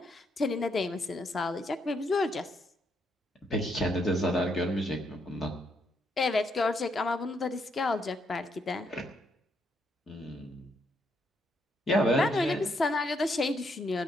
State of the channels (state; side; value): normal; both; correlation 0.76